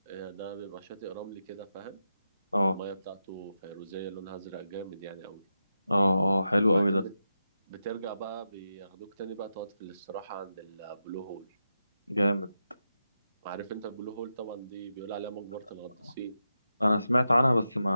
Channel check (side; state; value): both; inverted; correlation -0.89